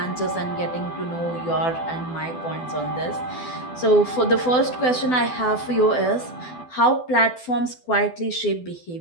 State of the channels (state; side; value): late; right; 12 ms